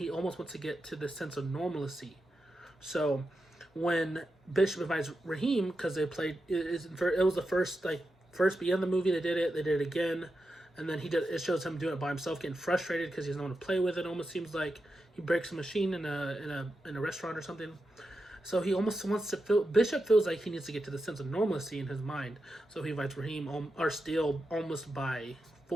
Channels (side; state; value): both; normal; correlation 0.89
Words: almost wants to get to this sense of normalcy. So when Bishop invites Raheem, because they played, it was the first beginning of the movie. They did it again. And then it shows him doing it by himself, getting frustrated because he doesn't want to play with it. Almost seems like he breaks a machine in a restaurant or something. So he almost wants to feel. Bishop feels like he needs to get to the sense of normalcy in his mind. So he invites Raheem or Steele almost by